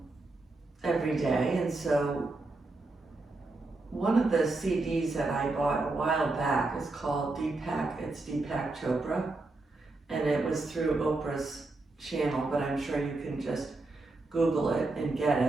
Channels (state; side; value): quieter; left; 3.2 dB